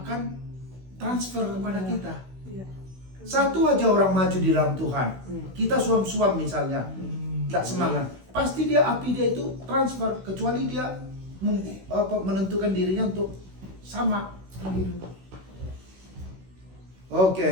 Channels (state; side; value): late; left; 16 ms